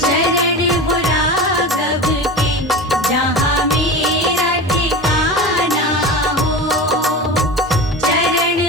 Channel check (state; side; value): normal; both; correlation 0.29